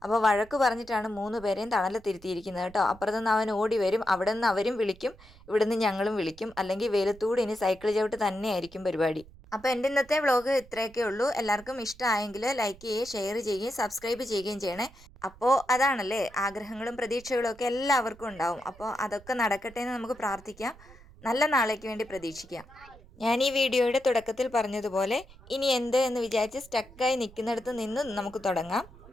അപ്പോൾ വഴക്ക് പറഞ്ഞിട്ടാണ് 3 പേരെയും തണലത്തിരുത്തിയിരിക്കുന്നത് കേട്ടോ. അപ്പുറത്തുനിന്ന് അവൻ ഓടി വരും, അവിടെ നിന്ന് അവരും വിളിക്കും, ഇവിടെ നിന്ന് ഞങ്ങളും വിളിക്കും. അല്ലെങ്കിൽ വെയിലത്തൂടെ ഇനി സൈക്കിൾ ചവിട്ട് തന്നെയായിരിക്കും പരിപാടി. അപ്പോൾ എൻ്റെ ഇന്നത്തെ വ്ളോഗ് ഇത്രയൊക്കെ ഉള്ളൂ. എല്ലാവർക്കും ഇഷ്ടമായെങ്കിൽ ലൈക്ക് ചെയ്യുകയും ഷെയർ ചെയ്യുകയും സബ്സ്ക്രൈബ് ചെയ്യുകയും ചെയ്യണേ. അപ്പോൾ അതാണല്ലേ, ആഗ്രഹങ്ങളും പ്രതീക്ഷകളും ഒക്കെ എല്ലാവർക്കും ഉണ്ടാവും. അപ്പോൾ അതൊക്കെ നടക്കട്ടെ എന്ന് നമുക്ക് പ്രാർത്ഥിക്കാം. നല്ല നാളേക്ക് വേണ്ടി പ്രതീക്ഷിക്കാം. ഞാൻ ഈ വീഡിയോയുടെ തുടക്കത്തിൽ പറഞ്ഞതുപോലെ ഇനി എന്ത് എന്ന് വിചാരിച്ച് സ്റ്റക്കായി നിൽക്കുന്നിടത്ത് നിന്ന് നമുക്ക് തുടങ്ങാം.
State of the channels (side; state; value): right; noise; rumble, 22 dB below the sound